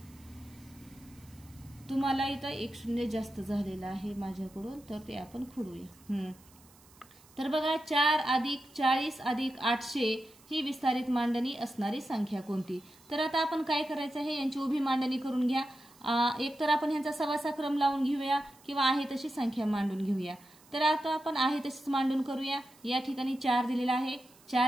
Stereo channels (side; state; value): right; noise; hiss, 26 dB below the sound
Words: तुम्हाला इथं 1 शून्य जास्त झालेला आहे माझ्याकडून, तर ते आपण खोडूया. तर बघा 4 अधिक 40 अधिक 800 ही विस्तारित मांडणी असणारी संख्या कोणती. तर आता आपण काय करायचं आहे, यांची उभी मांडणी करून घ्या. एक तर आपण ह्यांचा सवासा क्रम लावून घेऊया किंवा आहे तशी संख्या मांडून घेऊया। तर आता आपण आहे तशीच मांडून करूया। या ठिकाणी 4 दिलेला आहे,